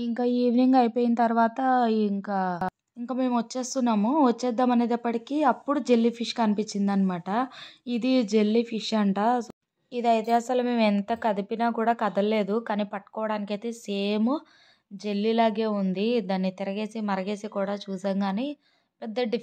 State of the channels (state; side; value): identical; both; correlation 1.00